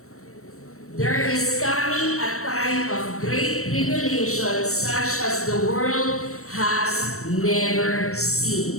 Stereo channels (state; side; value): late; right; 0.63 ms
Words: There is coming a time of great tribulation such as the world has never